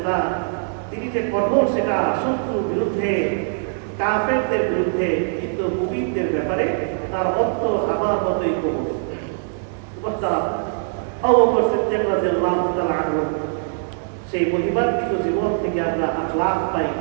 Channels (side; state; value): left; silent; digital silence